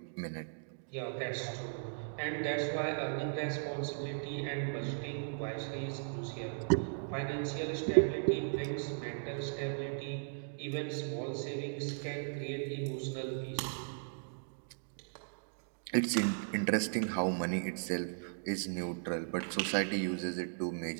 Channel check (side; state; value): left; silent; digital silence